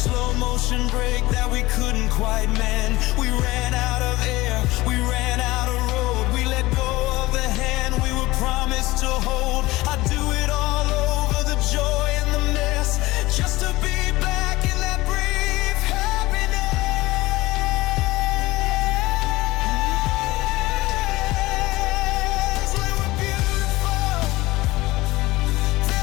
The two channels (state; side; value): quieter; right; 19.5 dB